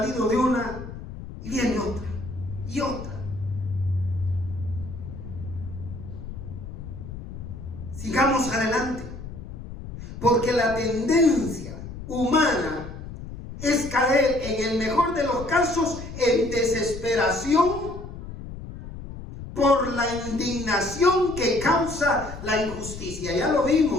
de una y viene otra y otra. Sigamos adelante, porque la tendencia humana es caer, en el mejor de los casos, en desesperación por la indignación que causa la injusticia. Ya lo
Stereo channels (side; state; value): left; noise; rumble, 11 dB below the sound